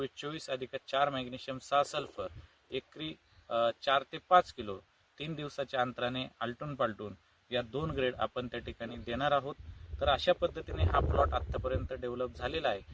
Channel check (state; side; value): identical; both; correlation 1.00